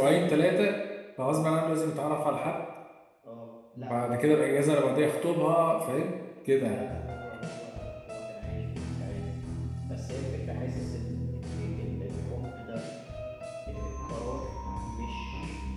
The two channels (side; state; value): both; identical; correlation 1.00